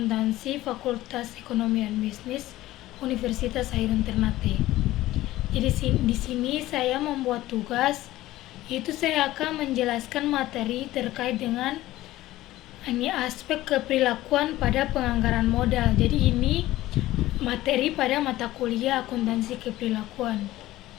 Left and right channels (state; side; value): quieter; right; 16.1 dB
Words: Fakultas Ekonomi dan Bisnis Universitas Hairun Ternate. Jadi di sini saya membuat tugas, yaitu saya akan menjelaskan materi terkait dengan aspek keperilakuan pada penganggaran modal. Jadi ini materi pada mata kuliah akuntansi keperilakuan.